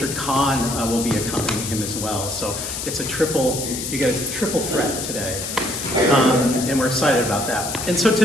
Kahn will be accompanying him as well. So it's you get a triple threat today. And we're excited about that. And so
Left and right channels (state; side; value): noise; left; hiss, 5 dB below the sound